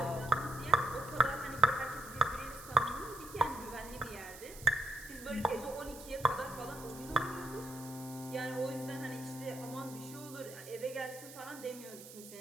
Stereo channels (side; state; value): right; noise; hiss, 15 dB below the sound